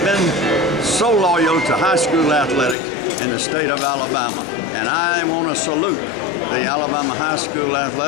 been so loyal to high school athletics in the state of Alabama. And I want to salute the Alabama High School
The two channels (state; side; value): drops out; right; at 2.8 s